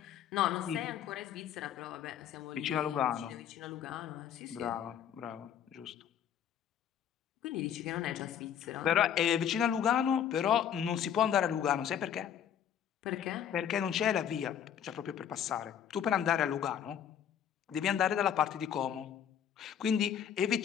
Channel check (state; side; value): quieter; right; 9.3 dB